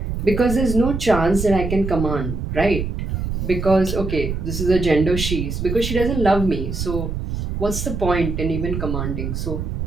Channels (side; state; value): right; noise; rumble, 4 dB below the sound